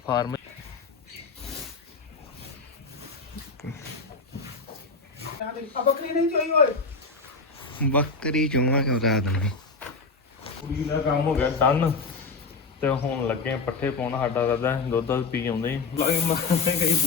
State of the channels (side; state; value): right; quieter; 4.1 dB